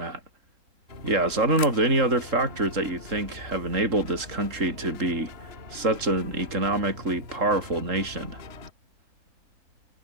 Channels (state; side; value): late; left; 3.7 ms